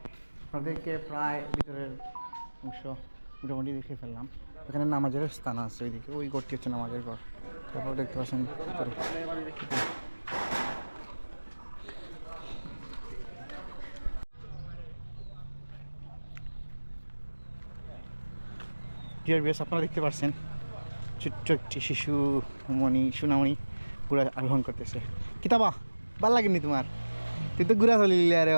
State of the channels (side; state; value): both; inverted; correlation -1.00